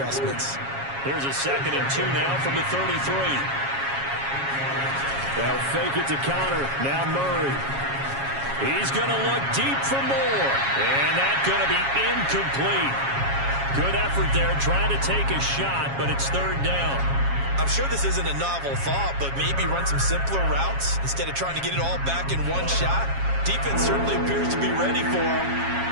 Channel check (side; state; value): left; late; 7.3 ms